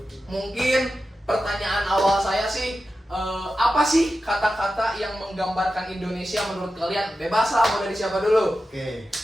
Mungkin pertanyaan awal saya sih, apa sih kata-kata yang menggambarkan Indonesia menurut kalian? Bebas lah, mau dari siapa dulu? Oke.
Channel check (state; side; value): normal; both; correlation 0.92